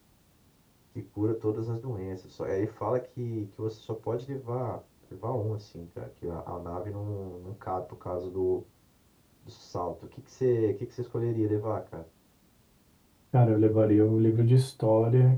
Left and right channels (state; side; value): identical; both; correlation 1.00